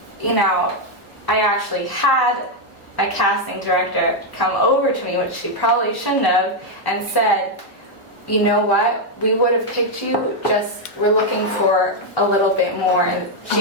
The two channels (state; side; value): normal; both; correlation 0.00